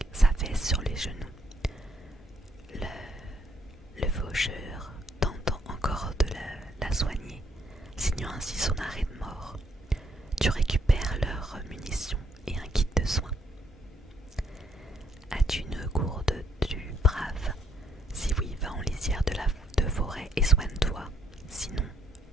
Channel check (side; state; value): both; normal; correlation 0.70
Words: s'affaisse sur les genoux. Le faucheur tentant encore de la soigner, signant ainsi son arrêt de mort. Tu récupères leurs munitions et un kit de soins. As-tu une gourde du brave? Si oui, va en lisière de forêt et soigne-toi. Sinon,